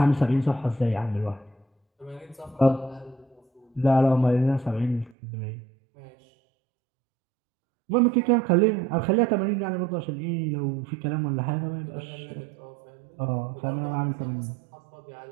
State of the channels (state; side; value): drops out; left; at 5.2 s